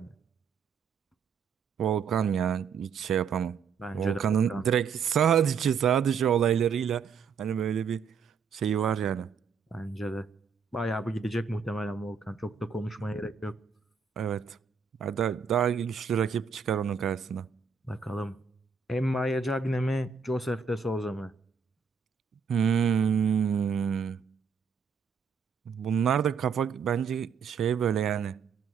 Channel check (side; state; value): left; quieter; 6.3 dB